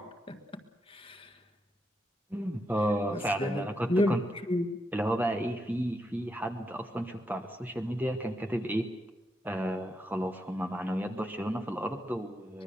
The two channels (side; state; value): both; normal; correlation 0.82